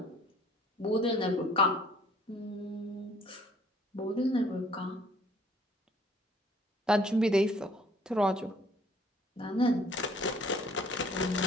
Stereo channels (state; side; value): normal; both; correlation 0.58